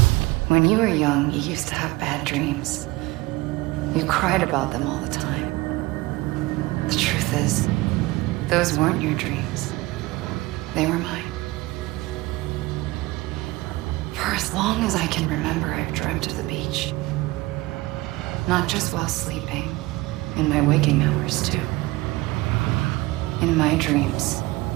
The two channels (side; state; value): left; quieter; 20.7 dB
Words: When you were young, you used to have bad dreams. You cried about them all the time. The truth is, those weren't your dreams. They were mine. For as long as I can remember, I've dreamt of the beach. Not just while sleeping, in my waking hours too. In my dreams,